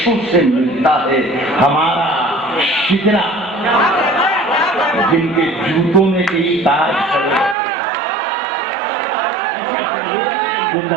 से मिलता है हमारा शिकरा जिनके जूतों में कई ताज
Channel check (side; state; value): left; drops out; at 7.6 s